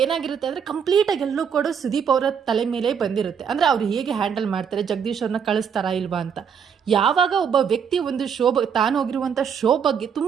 ಏನಾಗಿರುತ್ತೆ ಅಂದರೆ ಕಂಪ್ಲೀಟಾಗಿ ಎಲ್ಲೂ ಕೂಡ ಸುದೀಪ್ ಅವರ ತಲೆ ಮೇಲೆ ಬಂದಿರುತ್ತೆ. ಅಂದರೆ ಅವ್ರು ಹೇಗೆ ಹ್ಯಾಂಡಲ್ ಮಾಡ್ತಾರೆ, ಜಗದೀಶ್ ಅವ್ರನ್ನ ಕಳಿಸ್ತಾರಾ ಇಲ್ವಾ ಅಂತ. ಯಾವಾಗ ಒಬ್ಬ ವ್ಯಕ್ತಿ ಒಂದು ತಾನು ಹೋಗಿರುವಂಥ ಶೋ ಬಗ್ಗೆ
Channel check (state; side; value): quieter; left; 7.3 dB